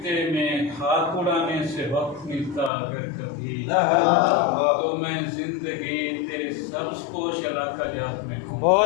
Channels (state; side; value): drops out; right; at 2.7 s